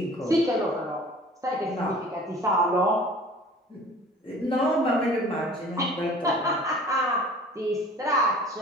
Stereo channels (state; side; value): normal; both; correlation 0.46